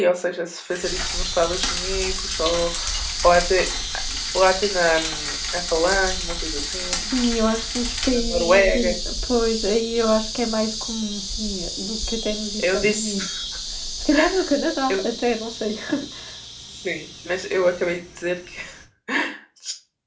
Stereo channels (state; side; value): identical; both; correlation 1.00